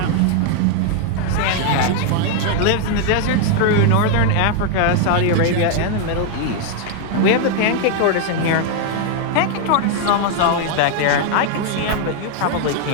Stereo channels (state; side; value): different; both; correlation 0.00